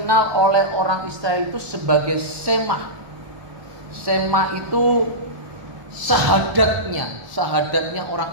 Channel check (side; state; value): left; late; 1.3 ms